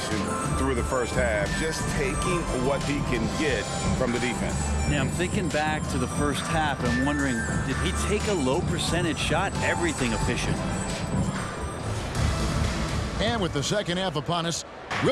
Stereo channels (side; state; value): both; identical; correlation 1.00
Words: through the first half, just taking what he can get from the defense. Yeah, I'm thinking back to the first half and wondering, did he take a low percentage shot? Everything efficient. And with the second half upon us,